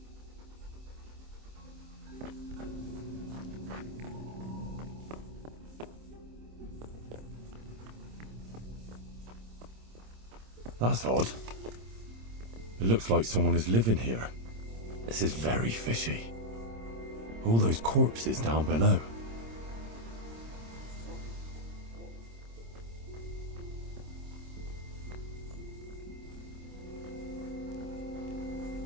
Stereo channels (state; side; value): late; left; 26 ms